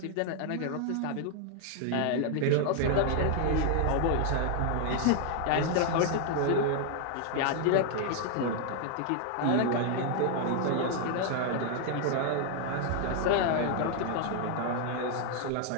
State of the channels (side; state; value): both; different; correlation 0.00